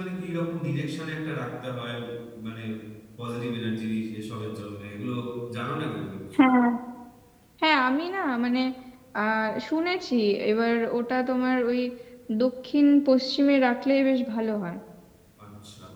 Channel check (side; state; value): both; identical; correlation 1.00